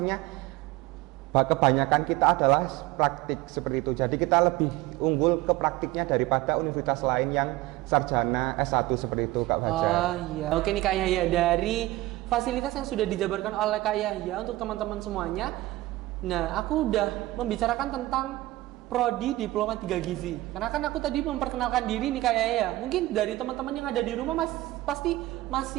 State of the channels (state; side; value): quieter; left; 17.8 dB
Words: kebanyakan kita adalah praktik seperti itu. Jadi kita lebih unggul ke praktiknya daripada universitas lain yang sarjana S1 seperti itu Kak Fajar. Oh iya. Oke nih Kak Yahya, dari fasilitas yang sudah dijabarkan oleh Kak Yahya untuk teman-teman semuanya. Nah, aku udah membicarakan tentang Prodi Diploma 3 Gizi. Karena kan aku tadi memperkenalkan diri nih Kak Yahya. Mungkin dari teman-teman yang ada di rumah pasti